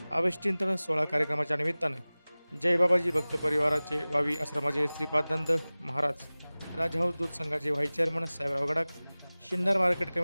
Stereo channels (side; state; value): both; inverted; correlation -0.99